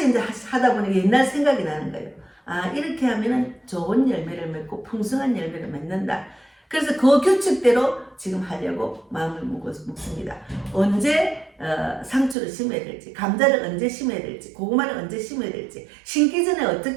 이제 하다 보니 옛날 생각이 나는 거예요. 아, 이렇게 하면은 좋은 열매를 맺고 풍성한 열매를 맺는다. 그래서 그 규칙대로 지금 하려고 마음을 먹습니다. 언제 상추를 심어야 될지, 감자를 언제 심어야 될지, 고구마를 언제 심어야 될지, 심기 전에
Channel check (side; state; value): left; drops out; at 12.4 s